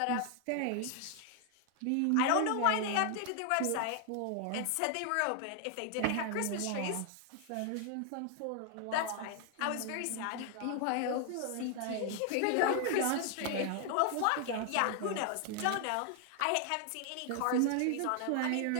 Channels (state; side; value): different; both; correlation 0.00